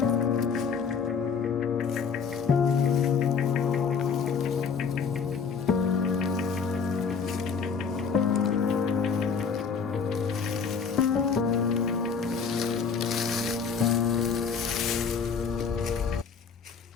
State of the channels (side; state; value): right; quieter; 5.9 dB